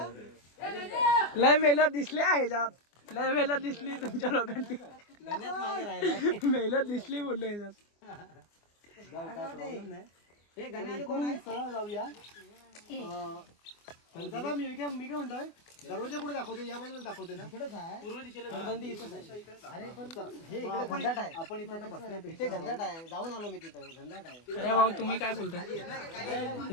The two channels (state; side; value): late; right; 24 ms